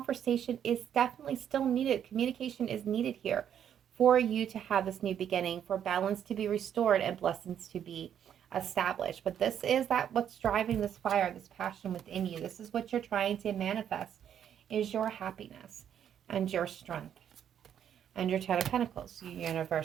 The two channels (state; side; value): quieter; left; 9.3 dB